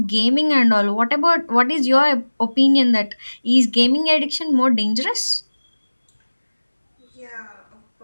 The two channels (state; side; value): inverted; both; correlation -1.00